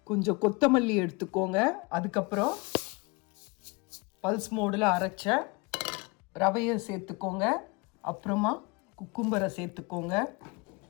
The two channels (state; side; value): quieter; right; 27.5 dB